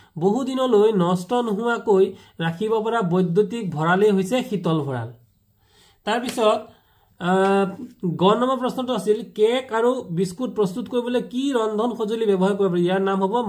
বহুদিনলৈ নষ্ট নোহোৱাকৈ ৰাখিব পৰা বৈদ্যুতিক ভঁৰালেই হৈছে শীতল ভঁৰাল। তাৰপিছত গ নম্বৰ প্ৰশ্নটো আছিল কেক আৰু বিস্কুট প্ৰস্তুত কৰিবলৈ কি ৰন্ধন সঁজুলি ব্যৱহাৰ কৰিব পাৰি? ইয়াৰ নাম হ'ব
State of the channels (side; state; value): both; identical; correlation 1.00